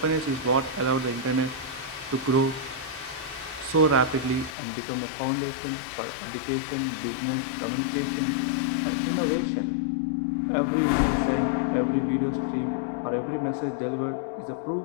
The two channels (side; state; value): right; drops out; at 4.5 s